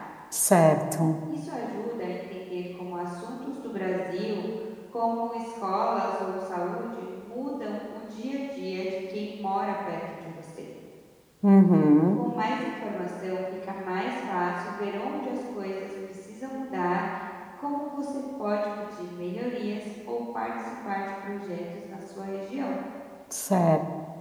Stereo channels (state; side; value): identical; both; correlation 1.00